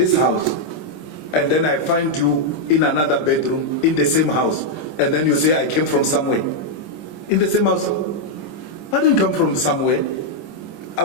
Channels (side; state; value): right; late; 26 ms